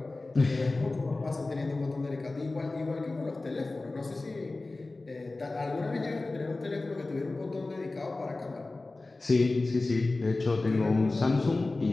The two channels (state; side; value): quieter; right; 3.2 dB